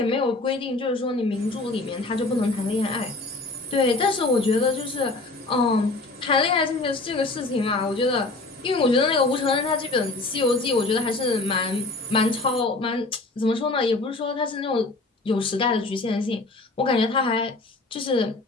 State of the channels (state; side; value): quieter; right; 3.2 dB